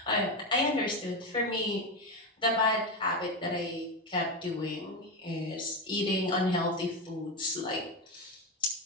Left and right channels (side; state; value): both; normal; correlation 0.14